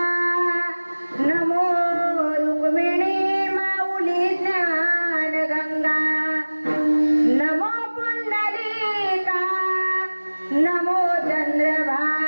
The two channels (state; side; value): inverted; both; correlation -1.00